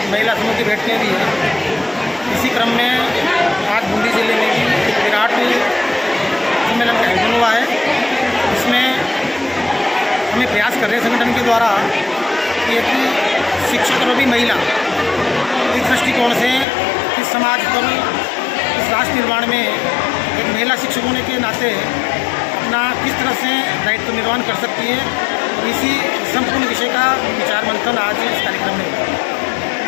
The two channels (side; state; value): right; drops out; at 16.7 s